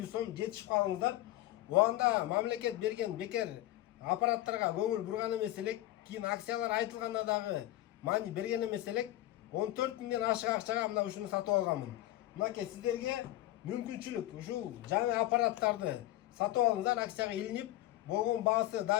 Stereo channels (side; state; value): right; quieter; 15.5 dB